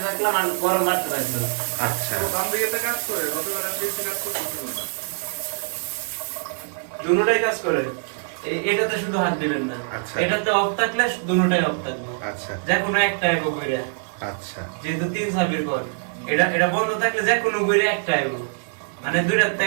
রাখলাম, আর গরম বাড়তে রাখলাম। আচ্ছা, বাম দিকেটা কাজ করে, গতকাল আমি দেখছি কাজ করতেছিল না। দুটোটাই কাজ করে। এটাতে শুধু হাত দিবেন না। আচ্ছা। এটাতে অফ থাকলে দুটোটাই অফ থাকবে। আচ্ছা, যে কোনো একটা এগো ঘুরে। আচ্ছা, যেহেতু 3 চাবির ঘর, এটা বন্ধ থাকলে যে কোনো ঘুরে একটা এগো, মানে দুইটাতে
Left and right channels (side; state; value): left; silent; digital silence